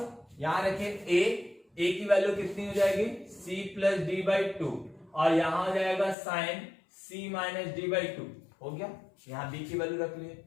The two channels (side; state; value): right; drops out; at 6.2 s